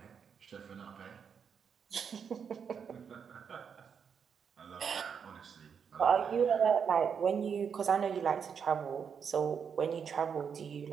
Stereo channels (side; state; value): left; quieter; 6.9 dB